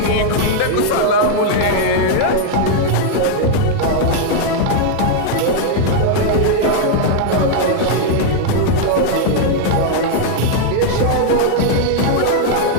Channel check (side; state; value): both; different; correlation 0.00